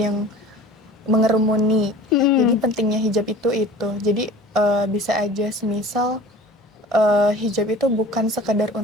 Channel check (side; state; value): both; normal; correlation 0.43